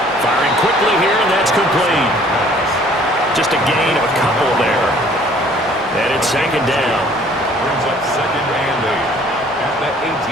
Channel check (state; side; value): normal; both; correlation 0.56